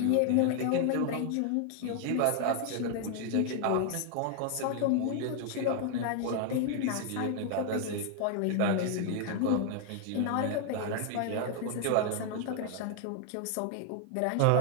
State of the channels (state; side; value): different; both; correlation 0.00